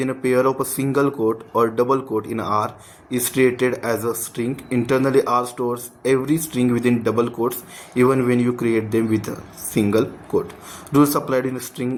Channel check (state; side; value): identical; both; correlation 1.00